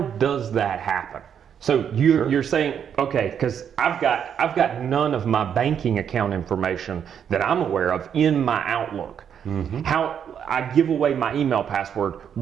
does that happen? So you're saying, okay, because I've got none of my banking account information that I'm aware of in my Outlook. How I give away my email password,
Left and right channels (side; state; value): left; quieter; 8.3 dB